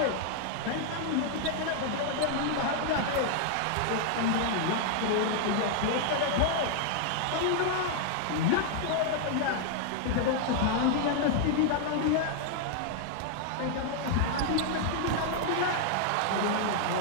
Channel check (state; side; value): different; both; correlation 0.00